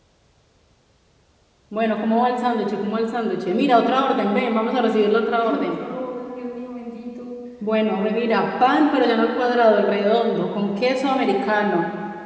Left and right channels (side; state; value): both; identical; correlation 1.00